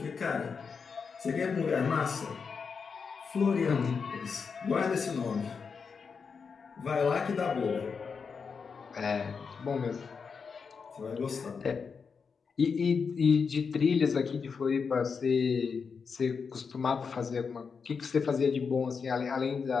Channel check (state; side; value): quieter; right; 5.6 dB